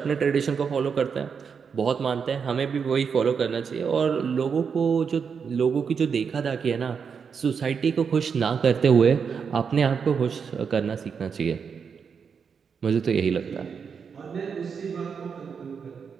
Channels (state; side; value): quieter; left; 6.3 dB